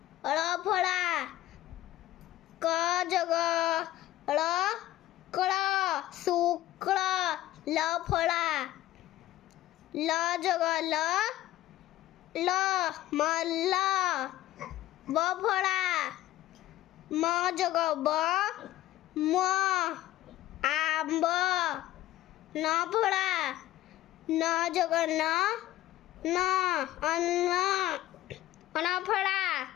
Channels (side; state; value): right; quieter; 15.1 dB